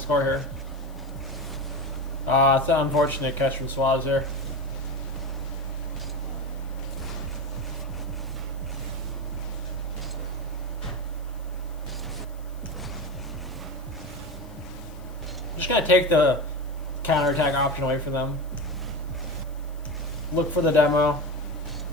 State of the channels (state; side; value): noise; left; hiss, 27 dB below the sound